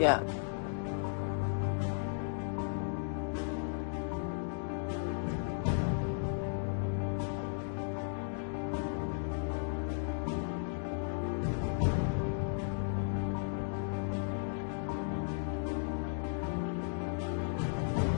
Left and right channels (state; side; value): silent; right; digital silence